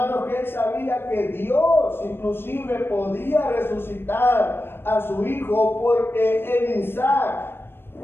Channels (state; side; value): late; right; 0.11 ms